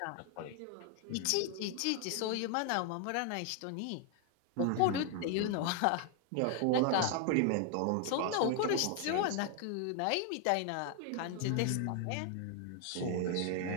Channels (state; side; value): different; both; correlation 0.00